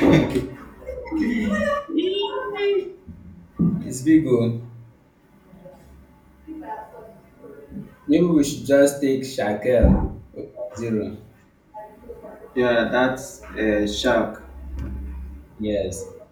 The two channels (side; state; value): both; identical; correlation 1.00